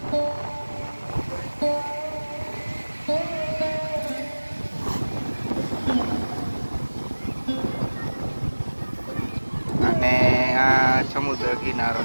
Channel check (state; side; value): inverted; both; correlation -1.00